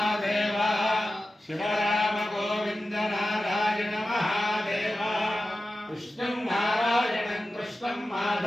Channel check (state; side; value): normal; both; correlation 0.93